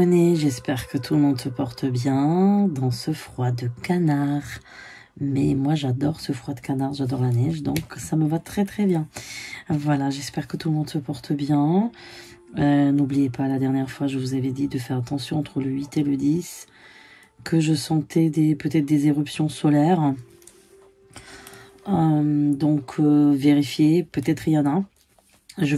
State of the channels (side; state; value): both; identical; correlation 1.00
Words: j'espère que tout le monde se porte bien dans ce froid de canard. Mais moi j'adore ce froid de canard, j'adore la neige, donc ça me va très très bien. Voilà, j'espère que tout le monde se porte bien. N'oubliez pas, la dernière fois je vous avais dit de faire attention entre le 8 et le 10, que je sentais peut-être des éruptions solaires. Donc vérifiez, peut-être il y en a. Je